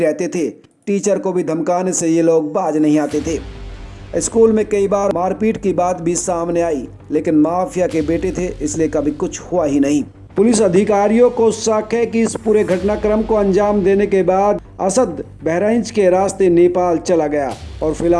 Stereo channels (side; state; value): both; identical; correlation 1.00